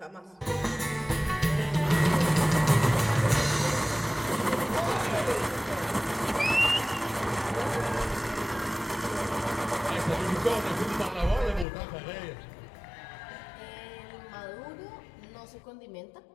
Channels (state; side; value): drops out; right; at 11.7 s